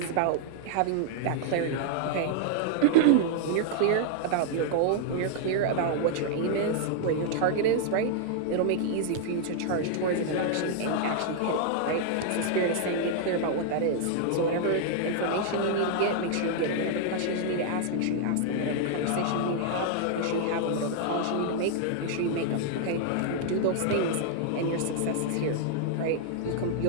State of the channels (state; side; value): different; both; correlation 0.00